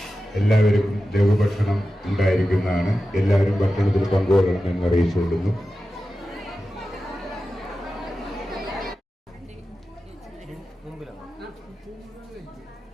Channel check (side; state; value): both; normal; correlation 0.93